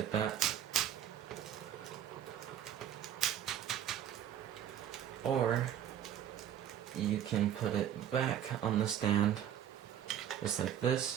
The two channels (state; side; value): quieter; left; 10.3 dB